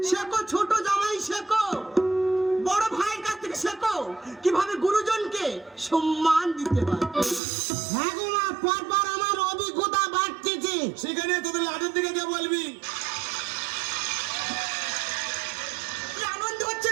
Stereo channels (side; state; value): left; drops out; at 7.4 s